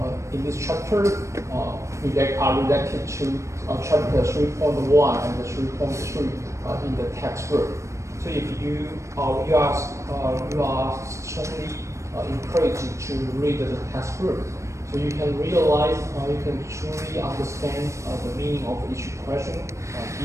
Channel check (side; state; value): left; late; 0.14 ms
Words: in this chapter are related to chapter 3.1 and 3.3 in the textbook. So if you are strongly encouraged to read the textbook, so you can realize, you can truly understand the meaning of each question